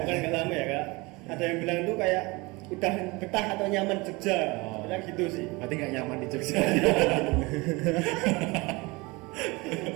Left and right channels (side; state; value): left; quieter; 24.7 dB